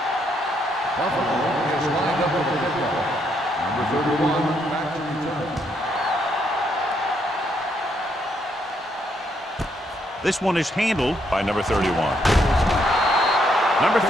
This one is handled by number 31. Number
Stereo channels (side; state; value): both; normal; correlation 0.74